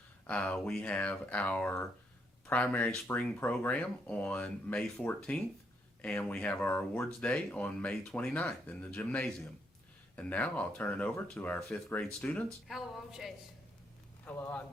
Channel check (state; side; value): normal; both; correlation 0.75